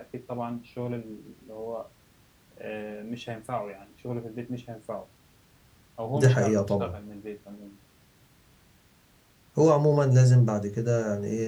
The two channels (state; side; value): identical; both; correlation 1.00